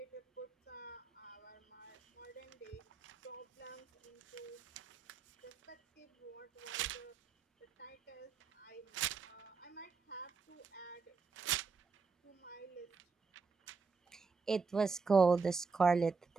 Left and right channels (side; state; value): left; quieter; 4.8 dB